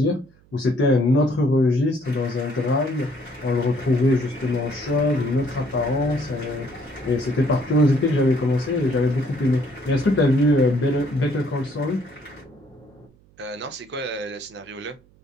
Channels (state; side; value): noise; right; hum, 30 dB below the sound